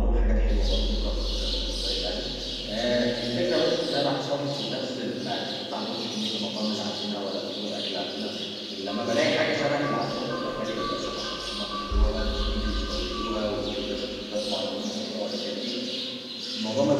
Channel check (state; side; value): identical; both; correlation 1.00